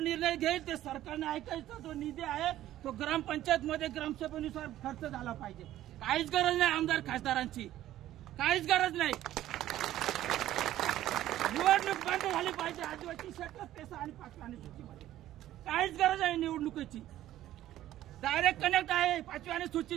घेईल ते सरकारने ऐकायचा. जो निधी आहे तो ग्रामपंचायत मध्ये ग्रामसभेनुसार खर्च झाला पाहिजे. काहीच गरज नाही आमदार खासदारांची, काहीच गरज नाही. निवडणूक बंद झाली पाहिजे आदिवासी क्षेत्रात पेसा आणि 5व्या अनुसूचीमध्ये. काहीच गरज आहे निवडणुकीची. डायरेक्ट कनेक्ट आहे 5व्या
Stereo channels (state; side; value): quieter; left; 13.5 dB